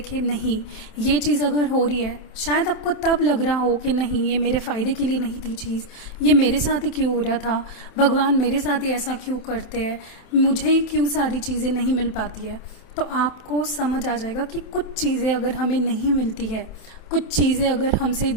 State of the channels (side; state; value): right; late; 27 ms